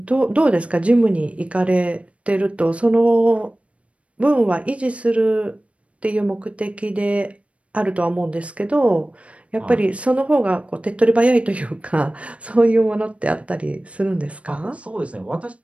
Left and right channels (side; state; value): left; late; 0.063 ms